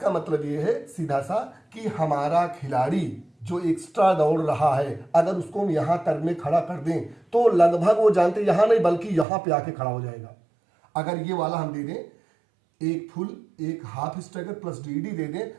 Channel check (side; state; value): left; drops out; at 9.2 s